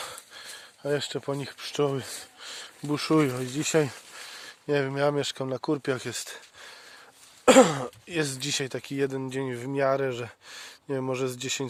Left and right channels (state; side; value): identical; both; correlation 1.00